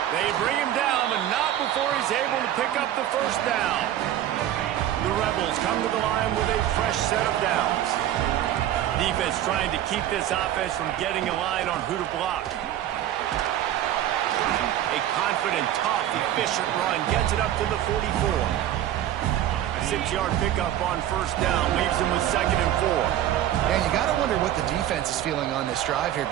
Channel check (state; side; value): quieter; left; 11.9 dB